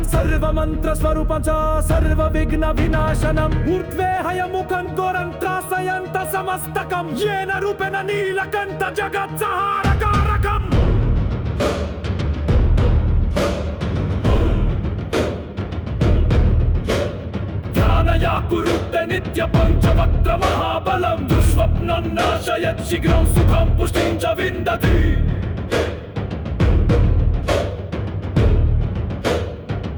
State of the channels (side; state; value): both; identical; correlation 1.00